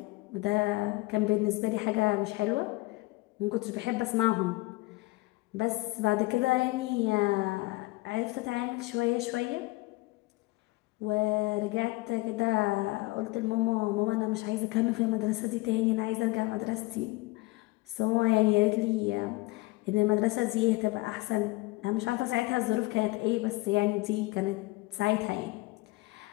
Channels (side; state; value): right; quieter; 21.8 dB